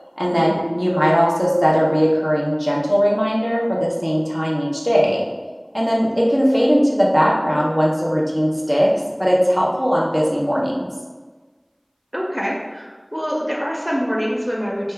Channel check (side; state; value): both; identical; correlation 1.00